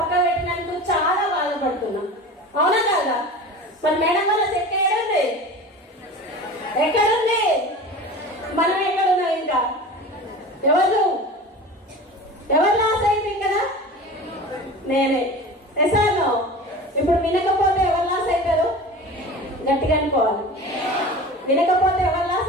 పెట్టినందుకు చాలా బాధపడుతున్నా. అవునా కాదా? మరి మేడం వల్ల చెక్ ఎక్కడుంది? మనం ఎక్కడున్నాం? ఇంకా ఎవరు లాస్ అయింది కదా? నేనే. ఎసాను. ఇప్పుడు వినకపోతే ఎవరు లాస్ అవుతారు? గట్టిగా అనుకోవాలి. వినకపోతే ఎవరు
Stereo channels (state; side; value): normal; both; correlation 0.35